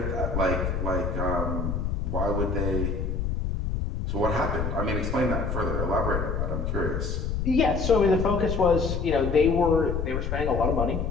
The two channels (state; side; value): noise; left; rumble, 1 dB below the sound